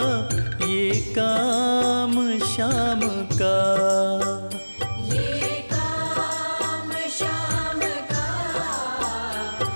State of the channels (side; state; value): both; inverted; correlation -1.00